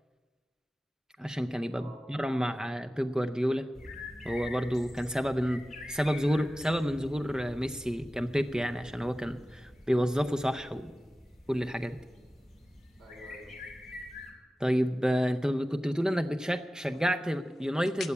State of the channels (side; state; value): both; normal; correlation 0.95